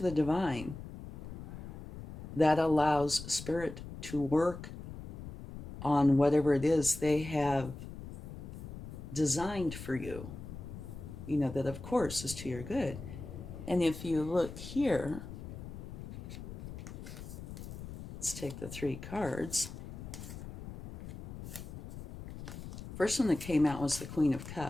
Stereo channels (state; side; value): noise; left; rumble, 11 dB below the sound